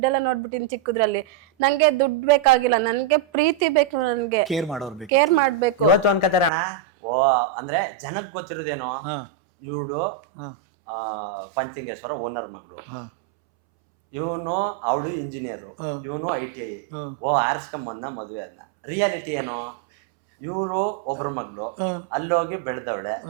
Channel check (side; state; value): left; drops out; at 6.5 s